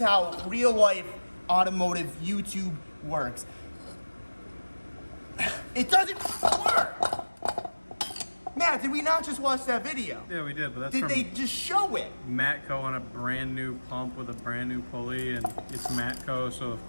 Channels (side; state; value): both; inverted; correlation -1.00